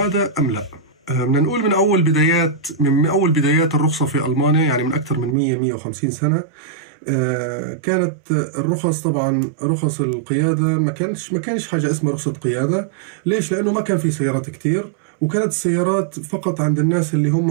أم لا؟ بدنا نقول من أول بدايات الرخصة في ألمانيا، يعني من أكثر من 150 سنة، كانت الرخص طبعا رخص القيادة ما كانش حاجة اسمها رخصة قيادة. ليش؟ لأنه ما كان في سيارات كتير، وكانت السيارات فقط عند الناس اللي هم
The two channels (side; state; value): left; drops out; at 5.4 s